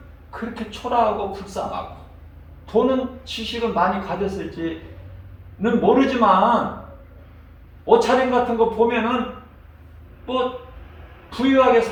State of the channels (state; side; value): identical; both; correlation 1.00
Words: 그렇게 초라하고 불쌍하고, 돈은 지식은 많이 가졌을지는 모르지만 옷차림 같은 거 보면은 부유하게